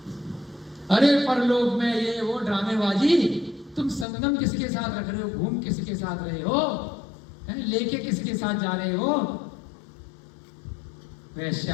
अरे परलोक में ये वो ड्रामेबाजी, तुम संगम किसके साथ रख रहे हो? घूम किसके साथ रहे हो? लेके किसके साथ जा रहे हो? वैश्या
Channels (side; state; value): right; drops out; at 4.0 s